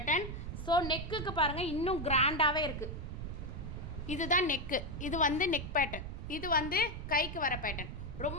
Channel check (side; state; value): right; noise; rumble, 7 dB below the sound